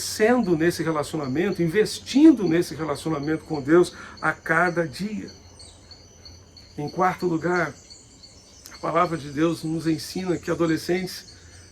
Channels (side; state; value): both; identical; correlation 1.00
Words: nesse relacionamento, investindo nesse relacionamento com Deus a cada dia. Em quarto lugar, a palavra de Deus nos ensina que adolescentes